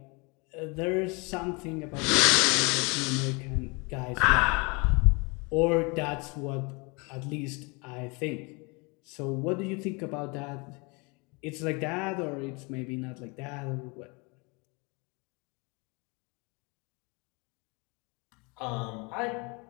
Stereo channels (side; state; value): right; quieter; 29.6 dB